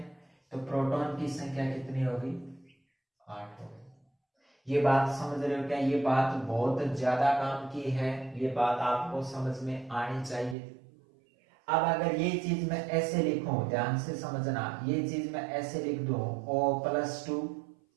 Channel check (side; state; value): left; drops out; at 10.6 s